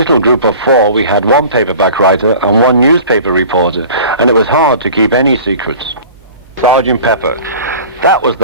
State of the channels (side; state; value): both; inverted; correlation -0.42